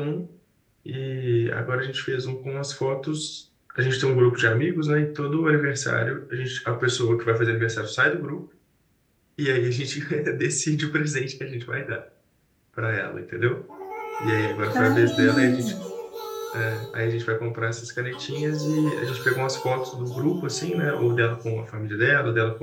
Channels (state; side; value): identical; both; correlation 1.00